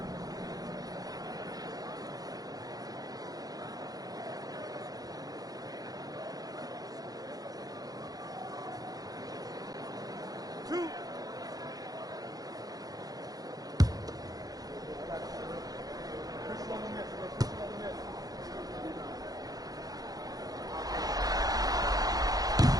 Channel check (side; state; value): left; late; 0.18 ms